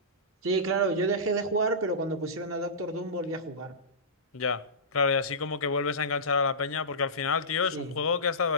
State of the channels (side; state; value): both; normal; correlation -0.20